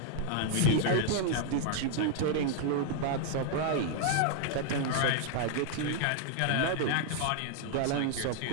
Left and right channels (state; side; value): different; both; correlation 0.00